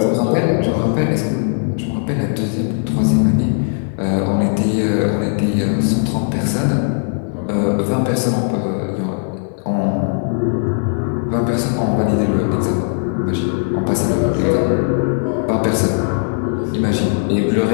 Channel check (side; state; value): right; silent; 59 dB below the other